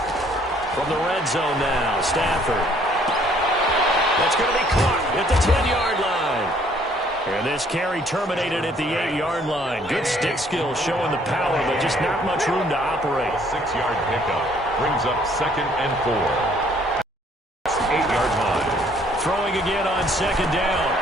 From the red zone now, Stafford. That's going to be caught at the 10-yard line. And this carry terminated at the 8-yard line. Good stick skills showing the power, but just not much room to operate. 6-yard pickup brings up 2nd and 4. 8-yard line. Throwing again on 2nd down.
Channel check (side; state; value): both; normal; correlation 0.62